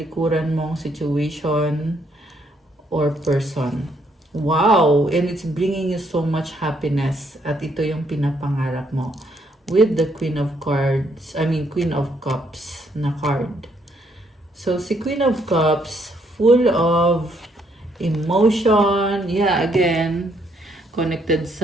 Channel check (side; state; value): both; normal; correlation 0.71